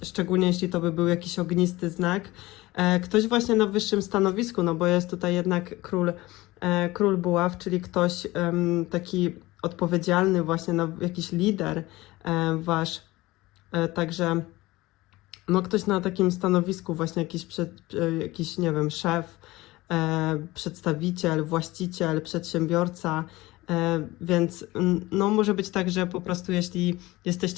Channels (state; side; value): quieter; right; 19.5 dB